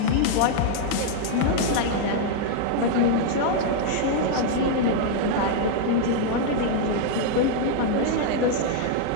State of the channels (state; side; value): different; both; correlation -0.01